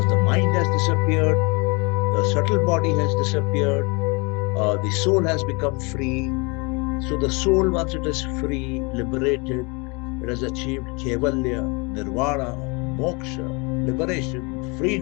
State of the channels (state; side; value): quieter; right; 29.8 dB